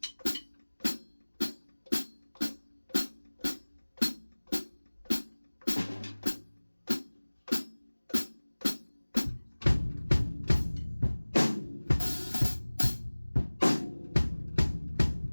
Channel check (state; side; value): inverted; both; correlation -1.00